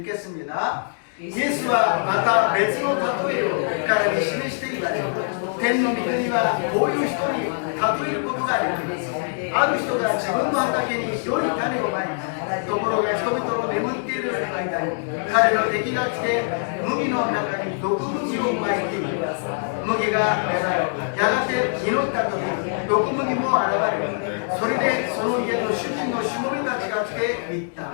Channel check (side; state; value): right; silent; digital silence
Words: 읽겠습니다. イエスはまた別の例えを彼に示して言われた。天の御国はこういう人に例えることができます。ある人が自分の畑に良い種をまいた。ところが人々の眠っている間に彼の敵が来て麦の中に毒麦をまいている。麦が芽生え、やがて実った時、毒麦も現れる。それでその家の主人のしもべたちが来て言っ